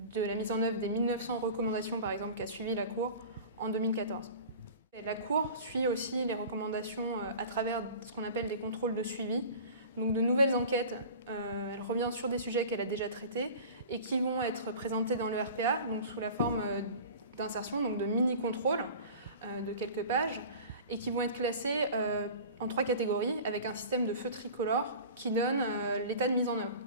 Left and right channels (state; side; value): inverted; both; correlation -0.39